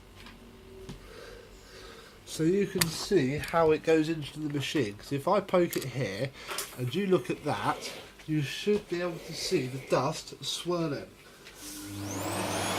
you can see how it goes into the machine. Because if I poke it here and you look at that, you should be able to see the dust swirling.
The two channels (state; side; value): identical; both; correlation 1.00